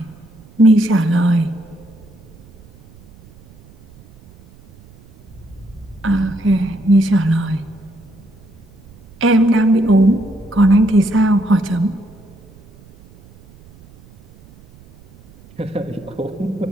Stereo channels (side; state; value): right; noise; rumble, 25 dB below the sound